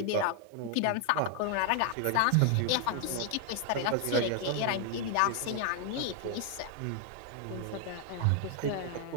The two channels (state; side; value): different; both; correlation 0.00